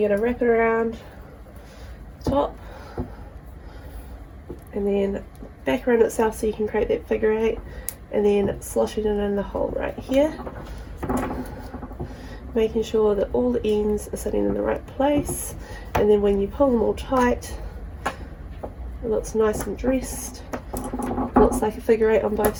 going to wrap it around the top and then back around itself so you can create that figure 8, and then sloshing it in the hole right here, making sure that all the ends are sitting in the right place. And then when you pull them all tight, it looks nice and dressed. It looks like a figure 8 on both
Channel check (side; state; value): both; identical; correlation 1.00